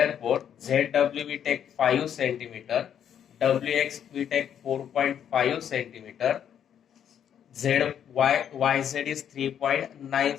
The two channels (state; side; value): quieter; right; 9.1 dB